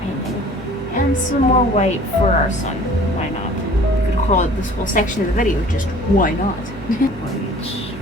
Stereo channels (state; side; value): normal; both; correlation 0.49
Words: And some more white for our sun. Why not? We could call it this whole section of the video just why not? White,